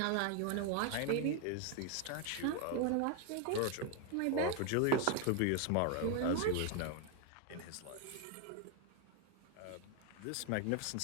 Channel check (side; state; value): both; different; correlation 0.01